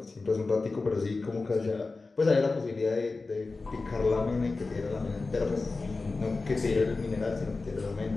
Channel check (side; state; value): right; quieter; 3.7 dB